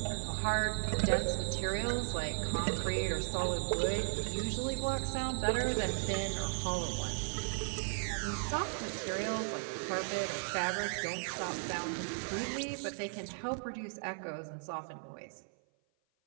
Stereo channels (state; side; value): silent; left; 54 dB below the other